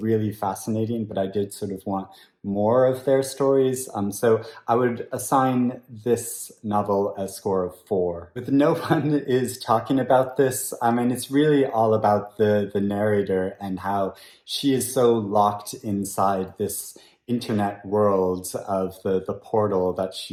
fascinating, but I did sort of want more of their stories. So I would assign this novel a score of 4. But no one is talking about this. I mean, it's really all about the narrator and how she is so locked inside this internet world of the portal that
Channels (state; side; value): identical; both; correlation 1.00